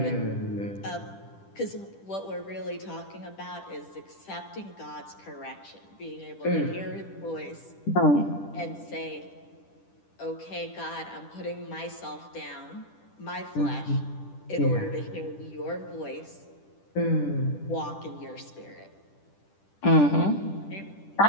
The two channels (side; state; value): right; late; 10 ms